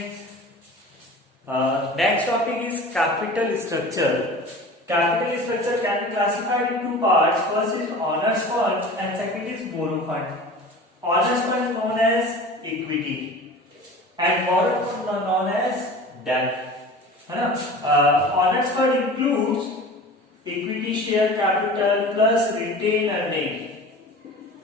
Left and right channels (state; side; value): normal; both; correlation 0.38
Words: Next topic is capital structure. Capital structure can be classified in two parts. First is owners fund and second is borrow fund. Owners fund is known as equity and borrow fund is known as debt. है ना? Owners fund includes equity share capital plus retained earning.